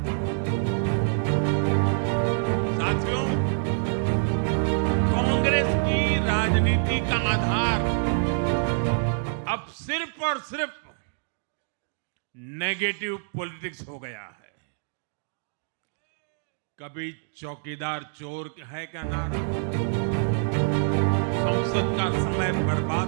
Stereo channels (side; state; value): left; silent; digital silence